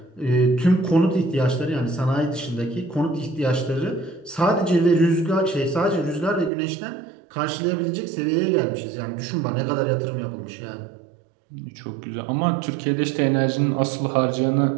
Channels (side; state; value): left; drops out; at 6.5 s